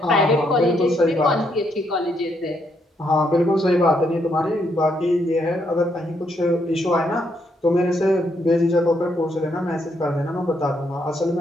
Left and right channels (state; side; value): normal; both; correlation 0.75